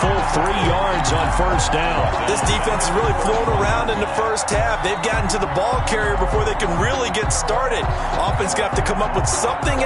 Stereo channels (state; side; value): identical; both; correlation 1.00